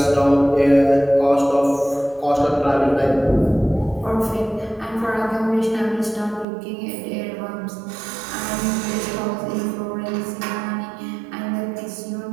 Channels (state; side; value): drops out; left; at 6.5 s